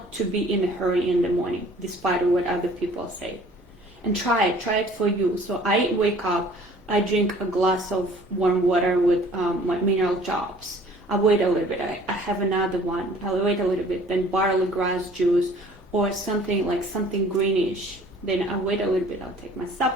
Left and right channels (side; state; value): both; normal; correlation 0.52